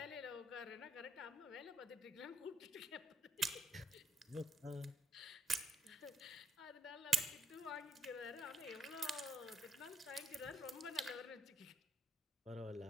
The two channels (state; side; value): normal; both; correlation 0.75